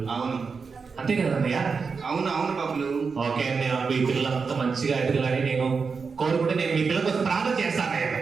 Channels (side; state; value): left; quieter; 5.1 dB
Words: అవును అంతే కదా అన్నయ్య? అవును అవును బబ్బులు. ఓకే అన్నయ్య, మీ పిల్లలంతా మంచిగా ఎదగాలని నేను కోరుకుంటే నేను మీ పిల్లల కోసం ప్రార్థన చేస్తాను అన్నయ్య.